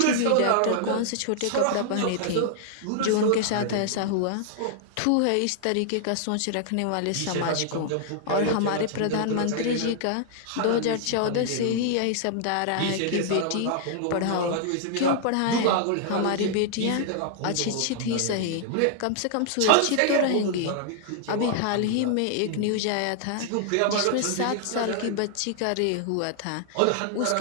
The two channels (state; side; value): different; both; correlation -0.01